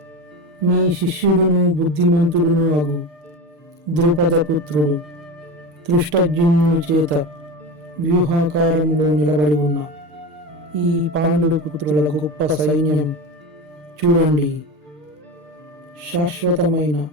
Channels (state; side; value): late; left; 6.6 ms